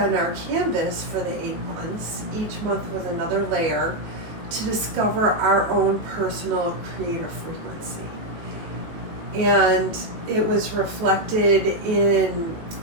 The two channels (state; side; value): late; left; 19 ms